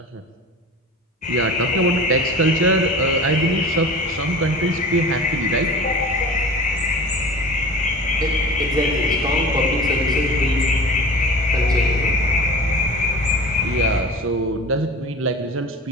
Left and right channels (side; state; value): both; normal; correlation 0.37